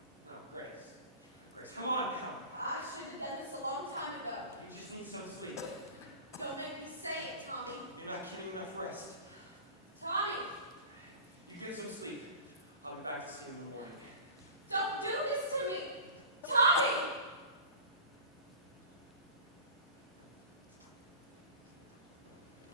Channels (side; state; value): both; inverted; correlation -0.36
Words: Grace, come on now. I should have done this a long time ago. You just need some sleep. Don't make me say it, Tommy. You're not getting enough rest. Tommy, You get some sleep. I'll be back to see you in the morning. don't do this to me. Tommy!